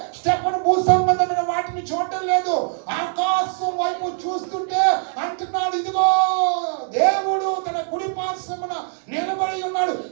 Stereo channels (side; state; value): left; silent; digital silence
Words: స్టెఫను భూ సంబంధమైన వాటిని చూడటం లేదు, ఆకాశం వైపు చూస్తుంటే అంటున్నాడు, ఇదిగో దేవుడు తన కుడి పార్శ్వమున నిలబడి ఉన్నాడు,